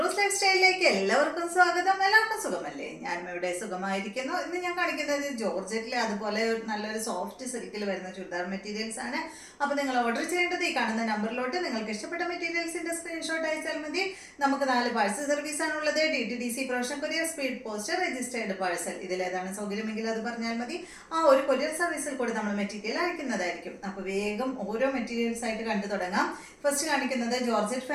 ലൈഫ് സ്റ്റൈലിലേക്ക് എല്ലാവർക്കും സ്വാഗതം. എല്ലാവർക്കും സുഖമല്ലേ? ഞാനും ഇവിടെ സുഖമായിരിക്കുന്നു. ഇന്ന് ഞാൻ കാണിക്കുന്നത് ജോർജറ്റിൽ അതുപോലെ നല്ലൊരു സോഫ്റ്റ് സിൽക്കിൽ വരുന്ന ചുരിദാർ മെറ്റീരിയൽസ് ആണ്. അപ്പോൾ നിങ്ങൾ ഓർഡർ ചെയ്യേണ്ടത് ഈ കാണുന്ന നമ്പറിലോട്ട് നിങ്ങൾക്ക് ഇഷ്ടപ്പെട്ട മെറ്റീരിയൽസിന്റെ സ്ക്രീൻഷോട്ട് അയച്ചാൽ മതി. നമുക്ക് 4 പാഴ്സൽ സർവീസ് ആണുള്ളത്. DTDC, profession courier, speed post, registered parcel. ഇതിലേതാണ് സൗകര്യമെങ്കിൽ അത് പറഞ്ഞാൽ മതി. ആ ഒരു കൊറിയർ സർവീസിൽ കൂടി നമ്മൾ മെറ്റീരിയൽ അയക്കുന്നതായിരിക്കും. അപ്പോൾ വേഗം ഓരോ മെറ്റീരിയൽസ് ആയിട്ട് കണ്ടു തുടങ്ങാം. ഫസ്റ്റ് കാണിക്കുന്നത് ജോർജറ്റ്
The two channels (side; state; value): both; identical; correlation 1.00